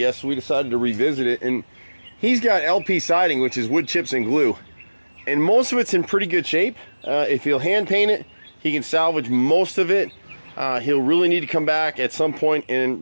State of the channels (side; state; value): both; inverted; correlation -1.00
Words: So we decided to revisit it, and he's got LP siding, which is wood chips and glue, and most of it's in pretty good shape. If he'll hand paint it, he can salvage most of it. He'll really need to come back at some point